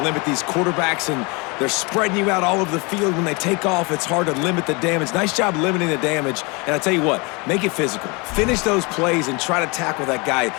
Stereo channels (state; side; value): quieter; right; 28.7 dB